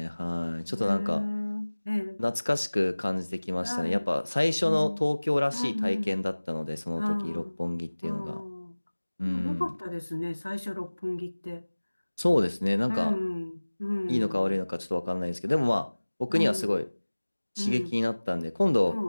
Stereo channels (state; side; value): inverted; both; correlation -1.00